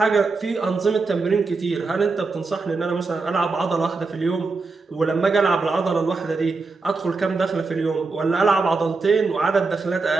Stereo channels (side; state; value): left; quieter; 4.0 dB